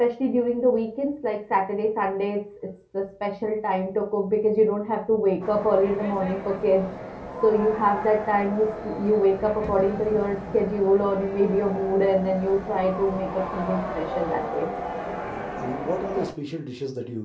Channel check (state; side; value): identical; both; correlation 1.00